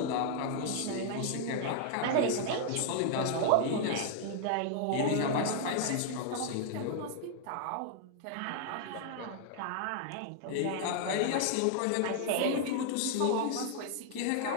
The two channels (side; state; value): both; different; correlation 0.00